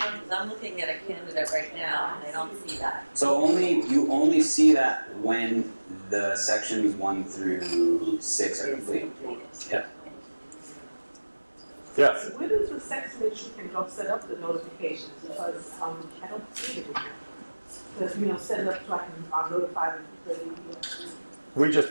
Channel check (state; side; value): inverted; both; correlation -1.00